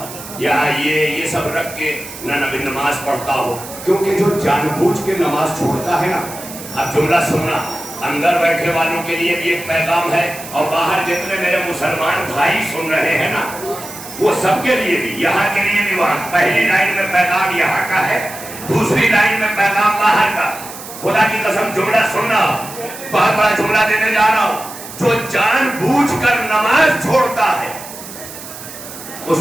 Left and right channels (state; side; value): noise; right; hiss, 13 dB below the sound